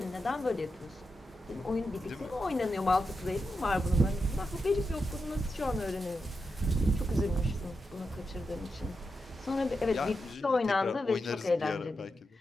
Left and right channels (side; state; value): both; normal; correlation 0.88